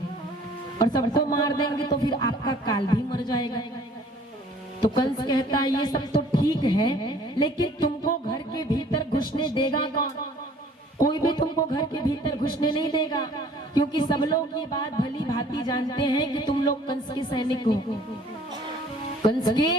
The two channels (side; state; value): both; normal; correlation 0.54